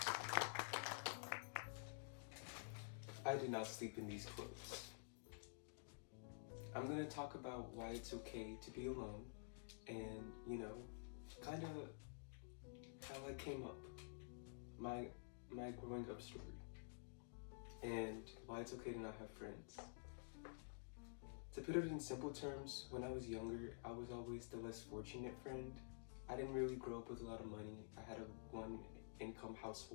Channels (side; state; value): right; silent; digital silence